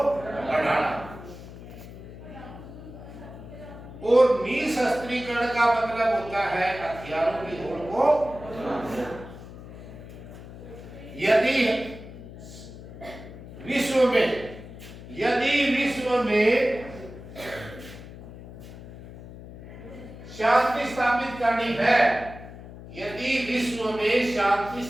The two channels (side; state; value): left; noise; hum, 15 dB below the sound